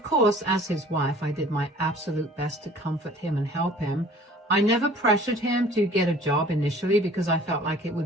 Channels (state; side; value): normal; both; correlation 0.50